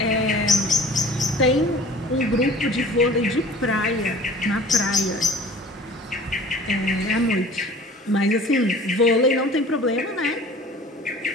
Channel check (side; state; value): both; normal; correlation 0.45